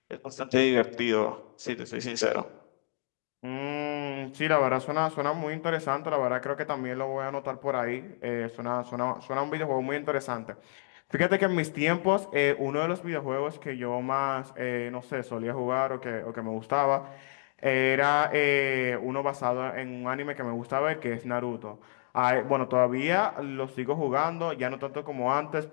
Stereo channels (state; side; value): silent; right; digital silence